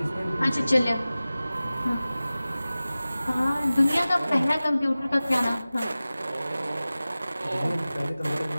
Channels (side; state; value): both; inverted; correlation -0.97